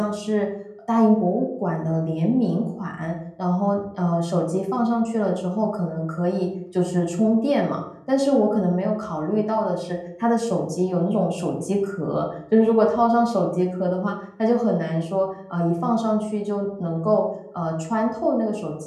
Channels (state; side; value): identical; both; correlation 1.00